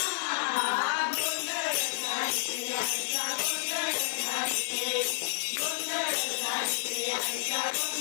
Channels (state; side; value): silent; right; digital silence